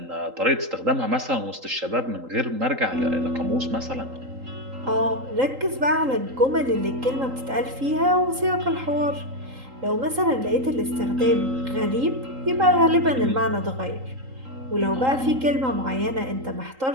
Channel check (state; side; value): late; left; 3.8 ms